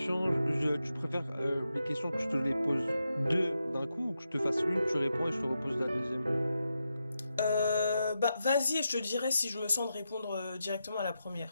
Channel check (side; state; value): both; inverted; correlation -0.87